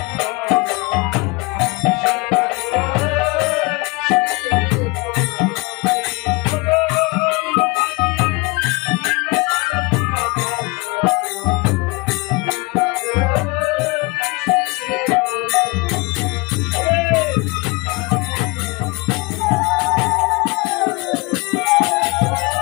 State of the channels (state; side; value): quieter; right; 26.2 dB